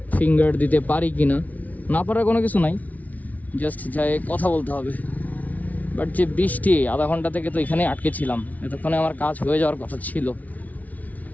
ফিঙ্গার দিতে পারি কি না, না পারার কোনো কিছু নাই, জাস্ট যাই কথা বলতে হবে। বাট যে বৃষ্টি, আধা ঘন্টা থেকে তো এখানে আটকে ছিলাম, এতক্ষণে আমার কাজ হয়ে যাওয়ার কথা ছিল।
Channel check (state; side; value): late; right; 0.073 ms